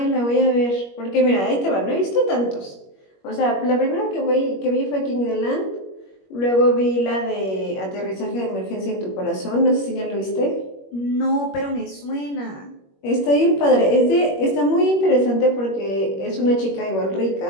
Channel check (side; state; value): right; late; 21 ms